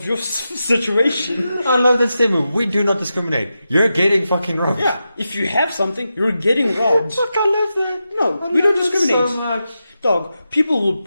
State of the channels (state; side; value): inverted; both; correlation -0.90